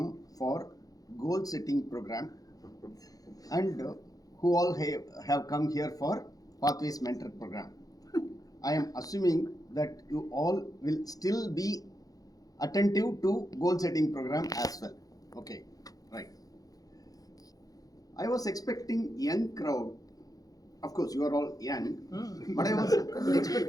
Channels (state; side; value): late; right; 0.18 ms